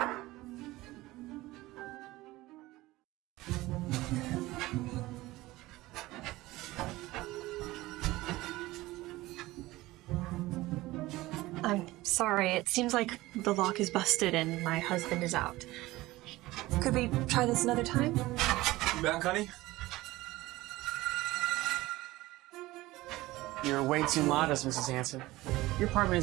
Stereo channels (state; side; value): quieter; left; 18.6 dB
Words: I'm sorry, it seems like the lock is busted and my husband is out. Could we try this another time? You back, honey? You're way too modest, Mrs. Hansen. Your apartment